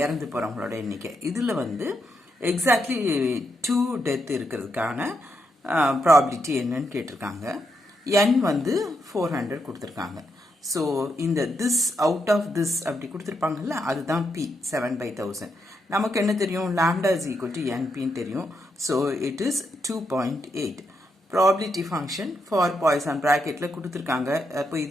இறந்து போறவங்களோட எண்ணிக்கை. இதுல எக்ஸாக்ட்லி 2 டெத் இருக்கிறதுக்கான ப்ராபபிலிட்டி என்னன்னு கேட்டிருக்காங்க. n 400 கொடுத்திருக்காங்க. ஸோ இந்த this out of this அப்படி கொடுத்துருப்பாங்கல்ல, அதுதான் p 7 by 1000. நமக்கு என்ன தெரியும், lambda is equal to npன்னு தெரியும். So it is 2.8. Probability function for Poisson ப்ராக்கெட்ல கொடுத்துருக்காங்க. அப்போ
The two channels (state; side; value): normal; both; correlation 0.81